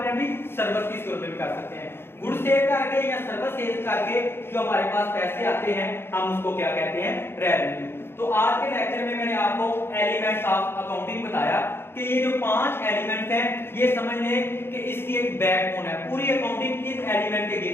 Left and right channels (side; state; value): right; late; 0.11 ms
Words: अपनी सर्विस की सूरत में भी कर सकते हैं। गुड्स सेल करके या सर्विस सेल करके जो हमारे पास पैसे आते हैं हम उसको क्या कहते हैं, रेवेन्यू। तो आज के लेक्चर में मैंने आपको एलिमेंट्स ऑफ अकाउंटिंग बताया कि ये जो 5 एलिमेंट्स हैं ये समझ लें कि इसकी एक बैकबोन है। पूरी अकाउंटिंग इस एलिमेंट के